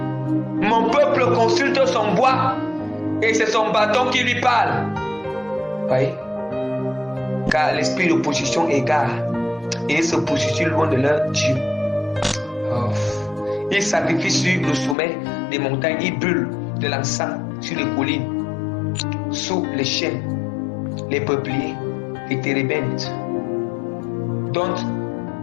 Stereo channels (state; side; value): drops out; right; at 15.0 s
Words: Mon peuple consulte son bois et c'est son bâton qui lui parle. Voyez? Car l'esprit de position égare et ils se positionnent loin de leur Dieu. Oh. Ils sacrifient sur le sommet des montagnes, ils brûlent de l'encens sur les collines, sous les chênes, les peupliers, les térébintes, dont